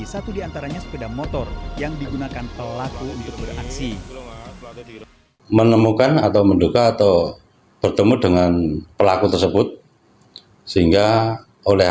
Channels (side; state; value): both; identical; correlation 1.00